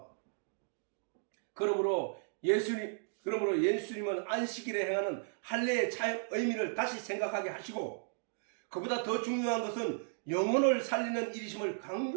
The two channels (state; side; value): silent; left; digital silence